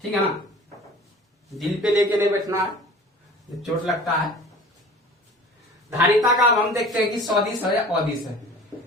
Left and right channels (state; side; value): normal; both; correlation 0.43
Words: ठीक है ना, दिल पे लेके नहीं बैठना है, चोट लगता है। धारिता का अब हम देखते हैं कि सदिश है या अदिश है।